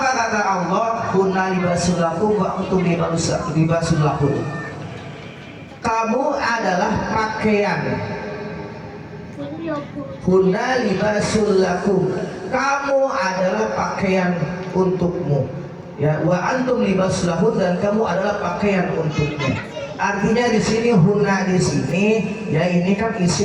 kata Allah? Kunna libasul lakum wa antum libasul lahum. Kamu adalah pakaian. Kunna libasul lakum. Kamu adalah pakaian untukmu. Ya, wa antum libasul lahum, dan kamu adalah pakaian untukmu. Artinya di sini hunna di sini ya ini kan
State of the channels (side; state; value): both; identical; correlation 1.00